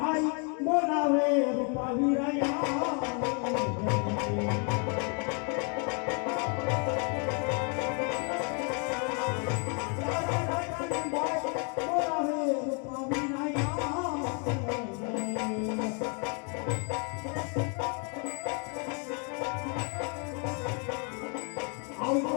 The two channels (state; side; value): quieter; right; 37.6 dB